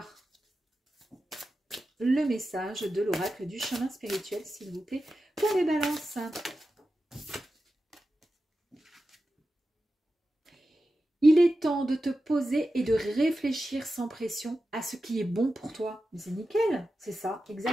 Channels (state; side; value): normal; both; correlation 0.92